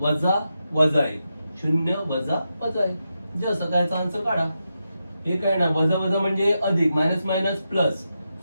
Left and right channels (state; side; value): inverted; both; correlation -0.87